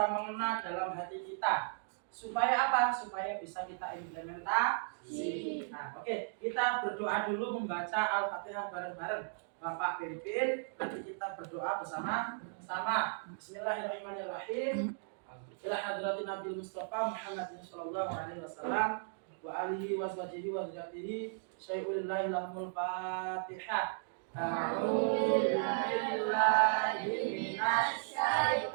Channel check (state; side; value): silent; left; digital silence